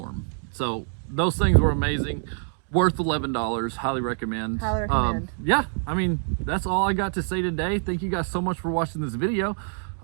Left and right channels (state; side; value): silent; left; digital silence